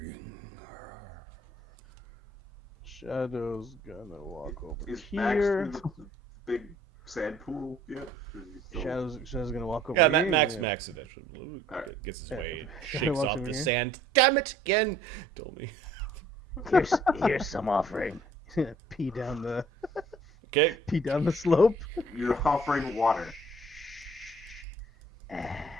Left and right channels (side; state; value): both; normal; correlation 0.57